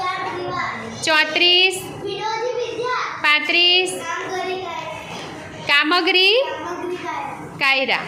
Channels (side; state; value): both; identical; correlation 1.00